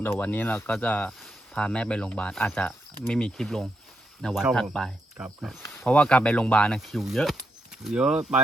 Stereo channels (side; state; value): both; normal; correlation 0.83